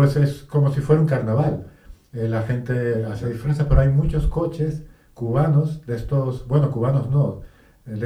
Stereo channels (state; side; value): identical; both; correlation 1.00